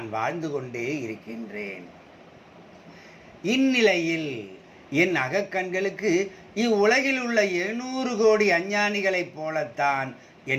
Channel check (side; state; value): both; identical; correlation 1.00